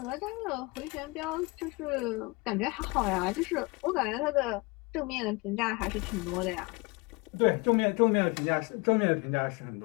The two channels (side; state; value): right; quieter; 26.5 dB